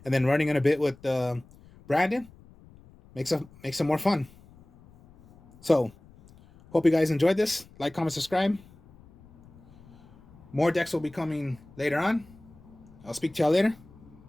And then running in a bit with the branded makes it more fun. So hope you guys enjoyed this. Like, comment, subscribe. More decks will be coming later on. I'll speak to y'all later.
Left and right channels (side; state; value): left; noise; rumble, 25 dB below the sound